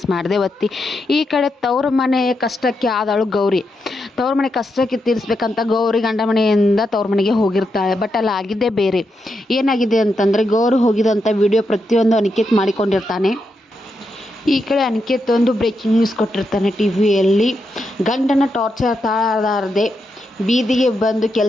ಮಾಡದೆ ಒತ್ತಿ. ಈ ಕಡೆ ತವ್ರ ಮನೆ ಕಷ್ಟಕ್ಕೆ ಆದಳು ಗೌರಿ. ತವ್ರ ಮನೆ ಕಷ್ಟಕ್ಕೆ ತೀರಿಸ್ಬೇಕಂತ ಗೌರಿ ಗಂಡ ಮನೆಯಿಂದ ತವ್ರ ಮನೆಗೆ ಹೋಗಿರ್ತಾಳೆ. ಬಟ್ ಅಲ್ಲಿ ಆಗಿದ್ದೇ ಬೇರೆ. ಏನಾಗಿದೆ ಅಂತಂದರೆ, ಗೌರಿ ಹೋಗಿದಂಥ ವಿಡಿಯೋ ಪ್ರತಿಯೊಂದು ಅನಿಕೇತ್ ಮಾಡಿಕೊಂಡಿರ್ತಾನೆ. ಈ ಕಡೆ ಅನಿಕೇತ್ ಒಂದು ಬ್ರೇಕಿಂಗ್ ನ್ಯೂಸ್ ಕೊಟ್ಟಿರ್ತಾನೆ ಟಿವಿಯಲ್ಲಿ. ಗಂಡನ ಟಾರ್ಚರ್ ತಾಳಲಾರದೆ ಬೀದಿಗೆ ಬಂದು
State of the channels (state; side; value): normal; both; correlation 0.84